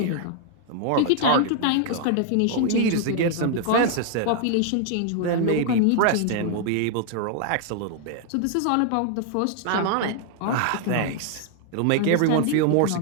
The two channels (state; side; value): different; both; correlation 0.00